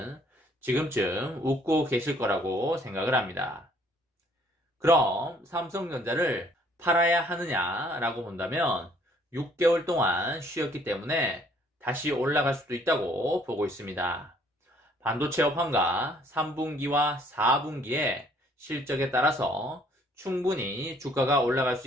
지금쯤 웃고 계실 거라고 생각을 합니다. 그럼 삼성전자를 팔아야 하느냐라고 본다면 6개월 동안 쉬었기 때문에 다시 올라갈 수도 있다고 보고 있습니다. 반도체 업황과 3분기와 4분기의 실적에 따라서 충분히 주가가 올라갈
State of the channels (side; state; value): both; normal; correlation 0.61